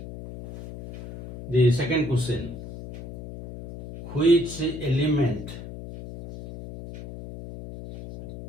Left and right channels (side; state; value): left; noise; hum, 12 dB below the sound